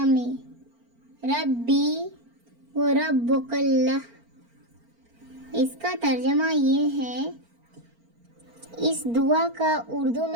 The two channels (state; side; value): late; left; 4.4 ms